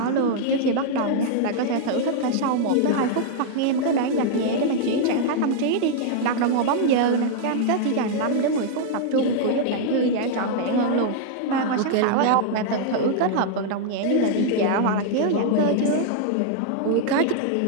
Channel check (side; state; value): both; different; correlation -0.01